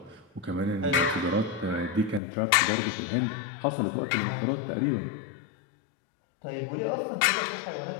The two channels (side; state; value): right; drops out; at 2.2 s